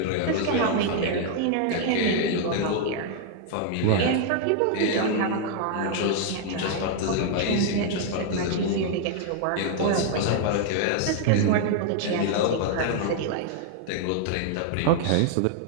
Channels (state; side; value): different; both; correlation 0.00